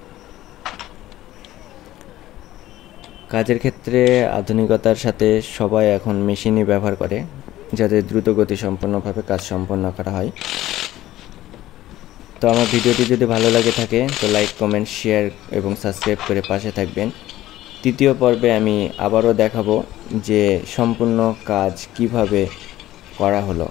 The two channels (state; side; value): quieter; right; 14.9 dB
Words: কাজের ক্ষেত্রে আধুনিকতার সাথে সবাই এখন মেশিনই ব্যবহার করে, যাতে দ্রুত গতি সম্পন্নভাবে কাজ সম্পন্ন করা হয়। তো আমার ভিডিওটি যদি ভালো লাগে থাকে তো লাইক, কমেন্ট, শেয়ার এবং সাবস্ক্রাইব করে পাশে থাকবেন। তৃতীয় পর্বে আমি আবারও দেখাবো যে সম্পূর্ণ কাজ কিভাবে করা হলো।